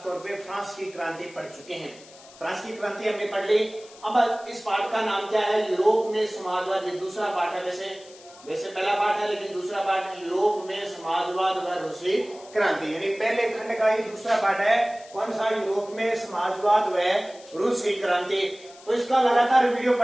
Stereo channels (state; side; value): noise; left; hiss, 22 dB below the sound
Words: तौर पे फ्रांस की क्रांति पढ़ चुके हैं। फ्रांस की क्रांति हमने पढ़ ली। अब इस पाठ का नाम क्या है? यूरोप में समाजवाद। ये दूसरा पाठ है, वैसे पहला पाठ है लेकिन दूसरा पाठ है यूरोप में समाजवाद व रूसी क्रांति, यानी पहले खंड का ही दूसरा पाठ है। कौन सा? यूरोप में समाजवाद व रूसी क्रांति। तो इसका लगातार वीडियो